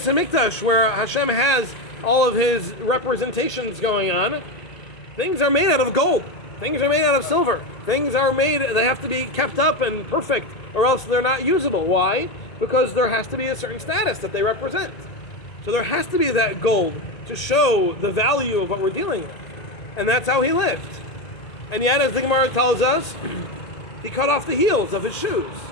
HaMikdash, where Hashem has all of his representations going on, things are made out of gold. Things are made out of silver. Things are made, they have to be kept up and perfect, or else they're not usable. Why? Because there has to be a certain status that they represent. So there has to be that gold to show the value of what we're dealing with. And that's how he lived. And yet, as the Gemara tells us, he cut off the heels of his shoes.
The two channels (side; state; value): right; late; 1.8 ms